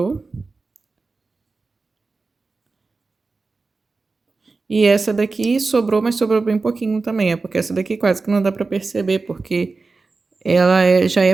E essa daqui sobrou, mas sobrou bem pouquinho também. É porque essa daqui quase que não dá pra perceber, porque ela já é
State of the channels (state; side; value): quieter; left; 4.0 dB